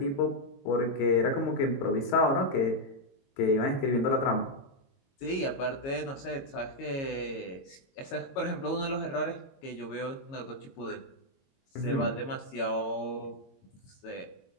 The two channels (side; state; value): right; late; 22 ms